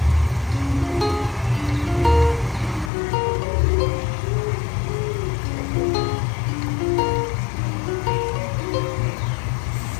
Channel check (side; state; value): right; drops out; at 2.9 s